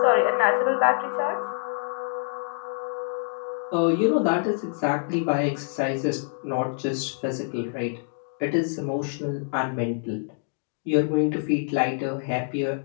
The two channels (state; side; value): silent; right; digital silence